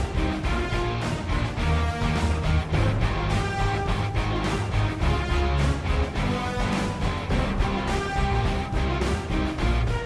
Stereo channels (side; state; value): both; identical; correlation 1.00